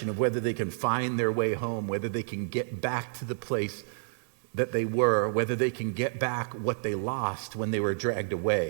of whether they can find their way home, whether they can get back to the place that they were, whether they can get back what they lost when they were dragged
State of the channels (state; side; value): silent; left; 58 dB below the other